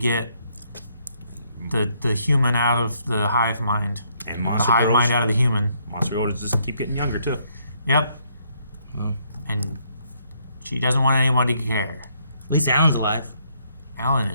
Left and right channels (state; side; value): inverted; both; correlation -0.71